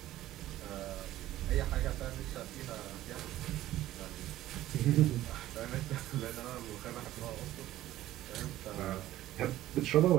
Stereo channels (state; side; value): quieter; left; 14.5 dB